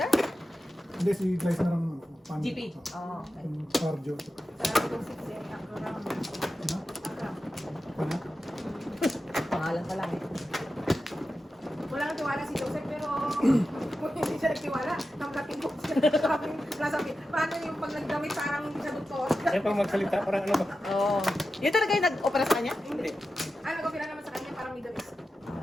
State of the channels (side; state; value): both; normal; correlation 0.91